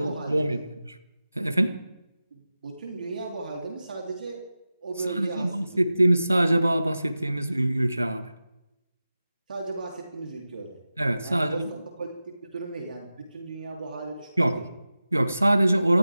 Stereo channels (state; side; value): inverted; both; correlation -0.94